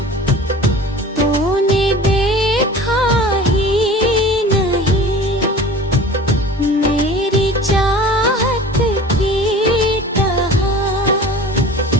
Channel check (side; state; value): both; normal; correlation 0.40